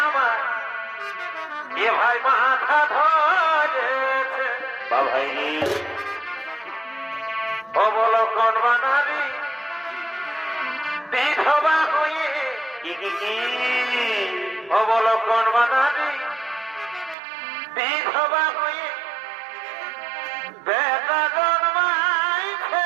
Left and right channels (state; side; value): drops out; left; at 17.2 s